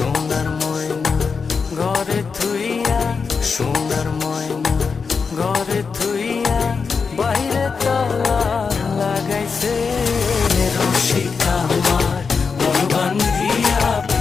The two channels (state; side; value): quieter; right; 5.3 dB